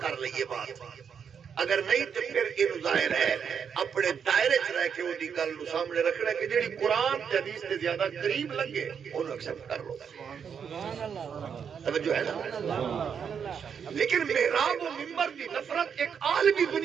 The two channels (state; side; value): quieter; left; 7.2 dB